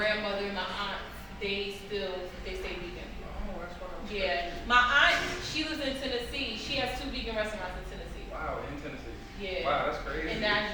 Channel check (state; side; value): identical; both; correlation 1.00